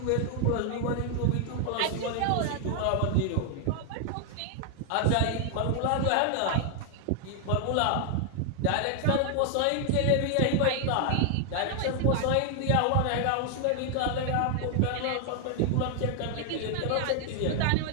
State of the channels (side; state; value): both; different; correlation 0.00